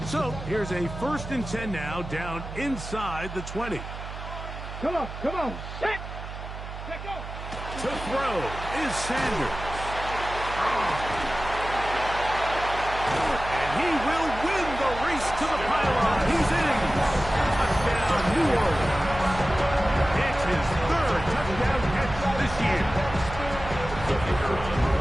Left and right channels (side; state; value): right; noise; hum, 10 dB below the sound